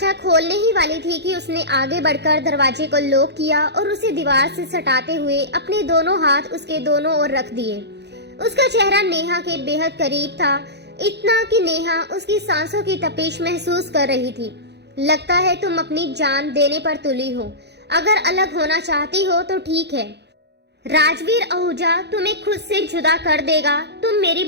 खोलने ही वाली थी कि उसने आगे बढ़कर दरवाजे को लॉक किया और उसे दीवार से सटाते हुए अपने दोनों हाथ उसके दोनों ओर रख दिए। उसका चेहरा नेहा के बेहद करीब था, इतना कि नेहा उसकी सांसों की तपिश महसूस कर रही थी। लगता है तुम अपनी जान देने पर तुली हो। अगर अलग होना चाहती हो तो ठीक है। राजवीर आहूजा तुम्हें खुद से जुदा कर देगा। तुम मेरी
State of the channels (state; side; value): late; left; 0.49 ms